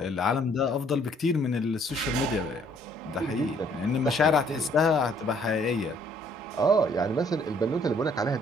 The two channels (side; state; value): both; normal; correlation 0.63